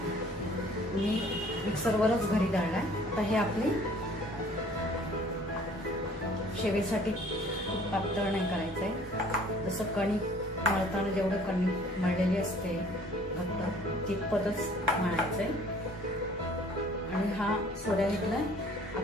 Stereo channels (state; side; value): normal; both; correlation 0.54